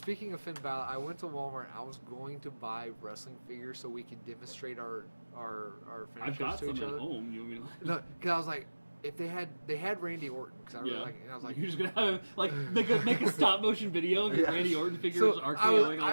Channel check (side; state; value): both; inverted; correlation -1.00